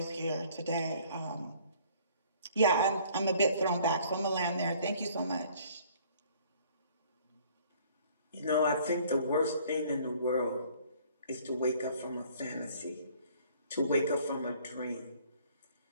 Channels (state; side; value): inverted; both; correlation -0.56